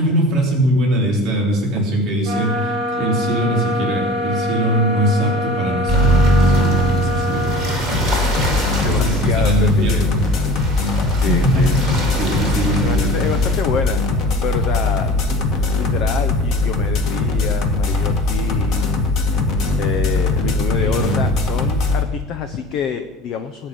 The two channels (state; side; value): normal; both; correlation 0.40